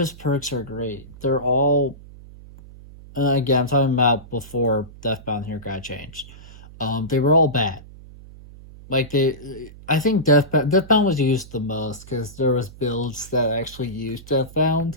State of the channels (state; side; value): noise; right; hum, 19 dB below the sound